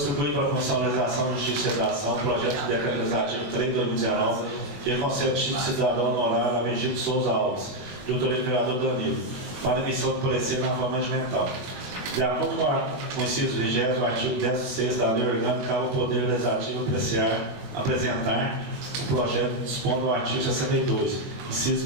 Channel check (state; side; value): late; left; 21 ms